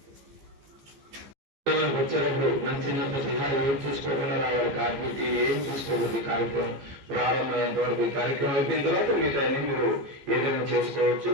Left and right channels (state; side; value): late; left; 15 ms